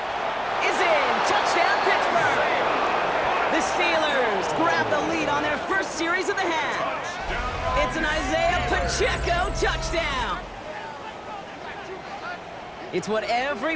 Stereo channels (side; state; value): both; identical; correlation 1.00